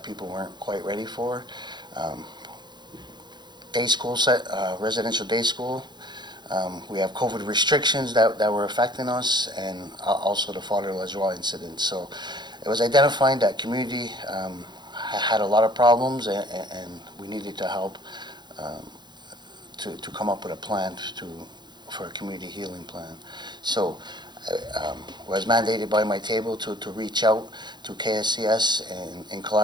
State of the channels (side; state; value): left; late; 0.21 ms